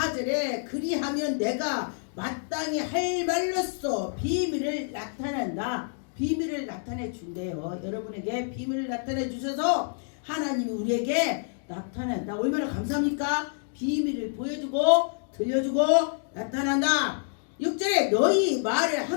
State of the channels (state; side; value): silent; right; 60 dB below the other